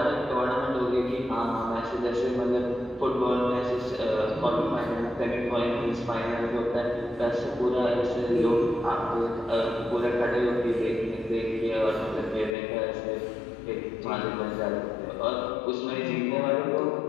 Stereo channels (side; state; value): right; drops out; at 12.6 s